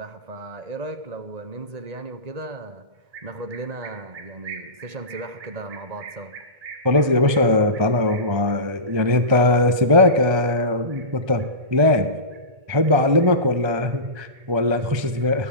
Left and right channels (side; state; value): left; late; 1.3 ms